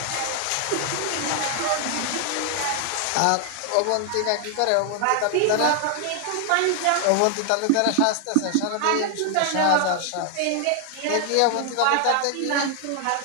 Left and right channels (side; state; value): both; different; correlation 0.00